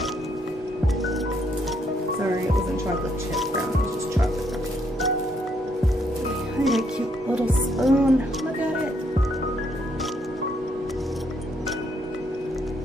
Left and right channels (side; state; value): both; normal; correlation 0.72